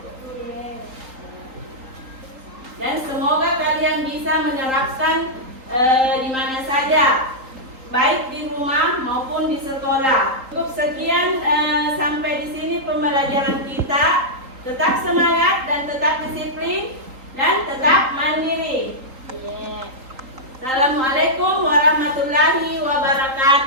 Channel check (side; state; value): left; late; 3.8 ms